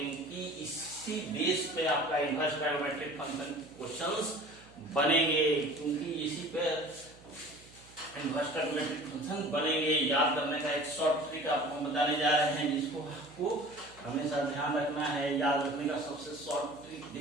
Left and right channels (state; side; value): noise; right; hum, 23 dB below the sound